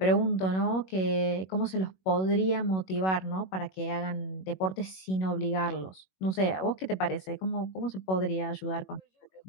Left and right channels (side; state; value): right; late; 21 ms